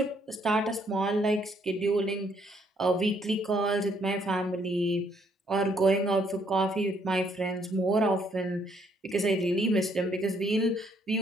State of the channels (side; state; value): both; normal; correlation 0.69